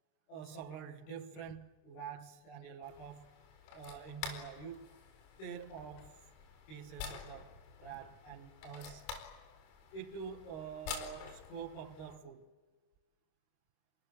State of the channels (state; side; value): late; right; 26 ms